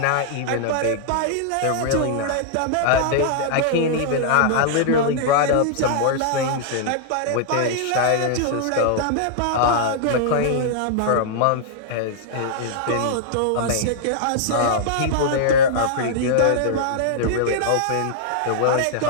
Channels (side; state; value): both; different; correlation -0.01